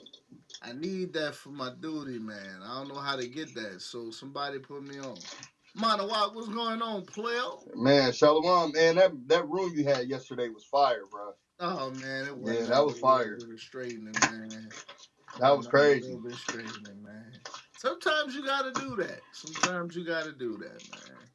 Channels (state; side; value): identical; both; correlation 1.00